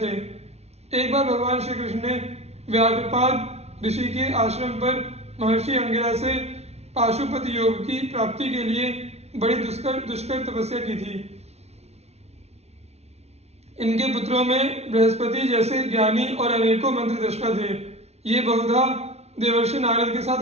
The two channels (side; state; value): left; late; 0.31 ms